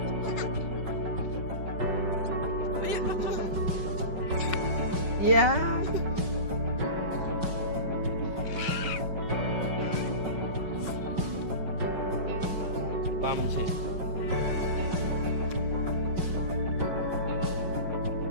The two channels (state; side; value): late; left; 5.4 ms